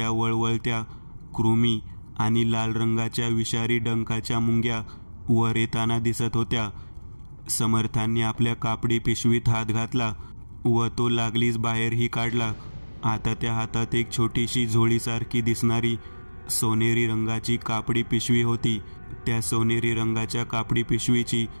वळवळत्या कृमी आणि लाल रंगाच्या विषारी डंखाच्या मुंग्या वर येताना दिसत होत्या. समर्थांनी आपल्या कापडी पिशवीत हात घातला व तो लागलीच बाहेरही काढला. आता त्या हातात एक छोटीशी झोळीसारखी दिसणारी सोनेरी रंगाची कापडी पिशवी होती. त्या सोनेरी रंगाच्या कापडी पिशवीची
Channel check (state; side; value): inverted; both; correlation -1.00